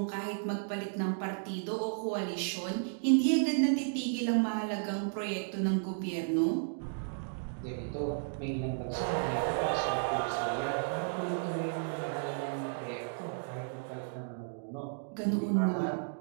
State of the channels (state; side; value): silent; left; digital silence